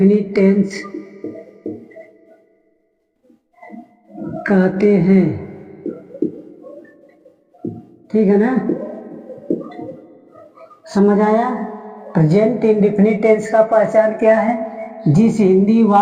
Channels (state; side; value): identical; both; correlation 1.00